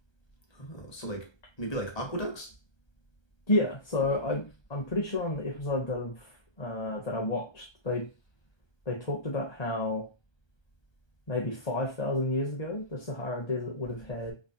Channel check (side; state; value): right; late; 1.3 ms